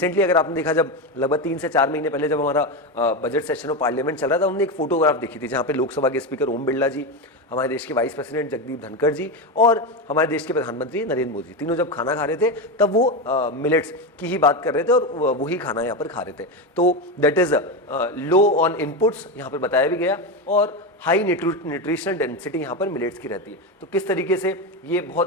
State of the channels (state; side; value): normal; both; correlation 0.15